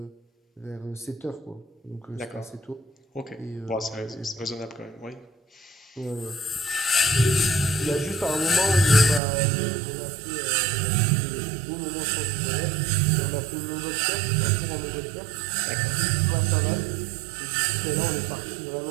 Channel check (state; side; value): drops out; left; at 9.2 s